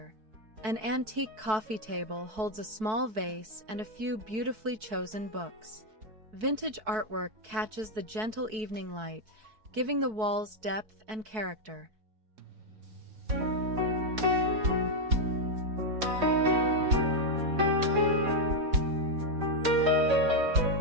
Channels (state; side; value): late; left; 4.6 ms